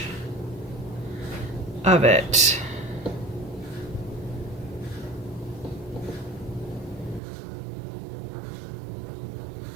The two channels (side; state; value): left; drops out; at 7.2 s